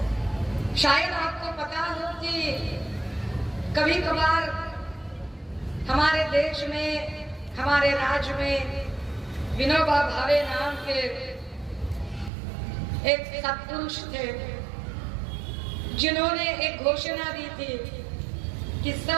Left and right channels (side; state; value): left; drops out; at 12.3 s